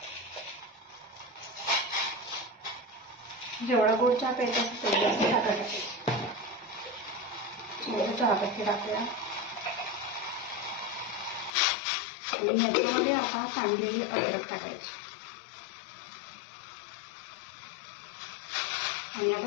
जेवढा गोड चहा प्यायचा तेवढी आपण साखर टाकायची. थोडं चहापत्ती टाकूया आणि ह्याच्यामध्ये आता कांदलेली अद्रक टाकायची आणि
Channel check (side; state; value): right; drops out; at 11.6 s